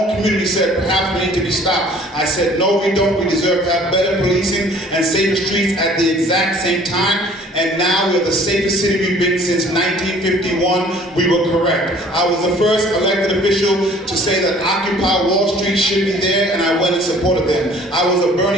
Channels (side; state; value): both; normal; correlation 0.53